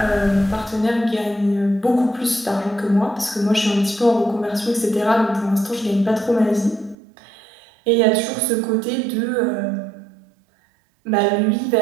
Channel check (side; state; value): left; drops out; at 7.0 s